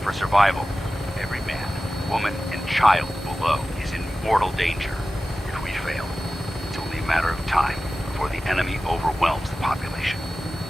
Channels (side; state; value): both; normal; correlation 0.95